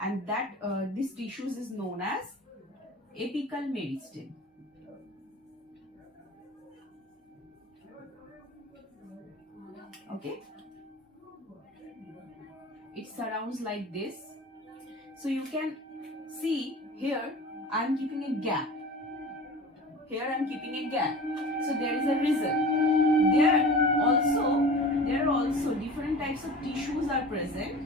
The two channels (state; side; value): normal; both; correlation 0.37